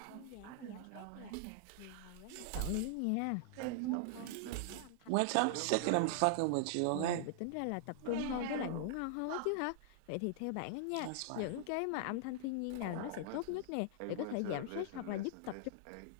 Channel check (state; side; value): different; both; correlation -0.01